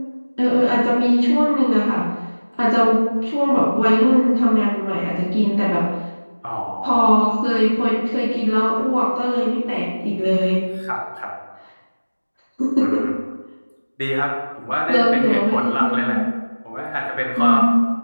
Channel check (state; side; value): inverted; both; correlation -1.00